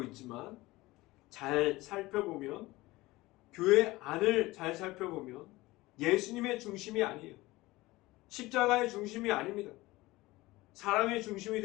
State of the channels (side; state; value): right; quieter; 19.7 dB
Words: 있지만, 잘 살펴보면, 교회 안을 잘 살펴보면 예수님의 중심이 아니에요. 십자가의 중심이 아닙니다. 사람의 중심이